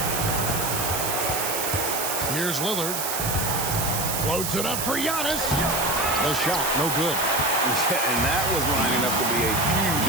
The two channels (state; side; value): noise; right; hiss, 2 dB below the sound